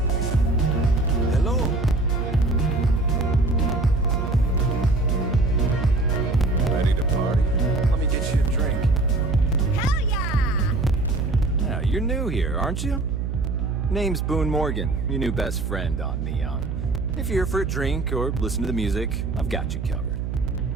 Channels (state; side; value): noise; right; hum, 3 dB below the sound